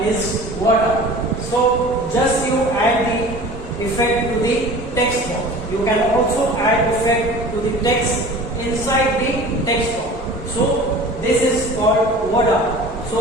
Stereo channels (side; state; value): both; normal; correlation 0.41